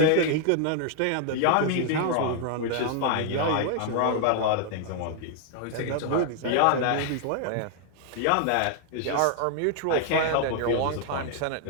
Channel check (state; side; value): different; both; correlation 0.00